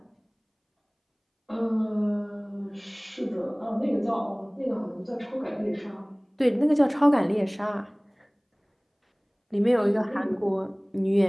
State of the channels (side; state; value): both; identical; correlation 1.00